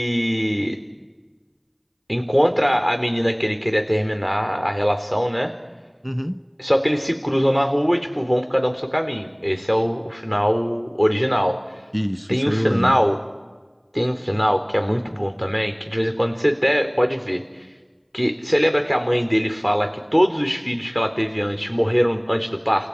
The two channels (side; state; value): both; identical; correlation 1.00